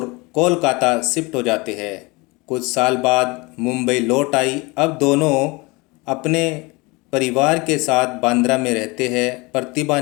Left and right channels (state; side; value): quieter; right; 25.5 dB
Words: कोलकाता शिफ्ट हो जाते हैं। कुछ साल बाद मुंबई लौट आई। अब दोनों अपने परिवार के साथ बांद्रा में रहते हैं। प्रतिभा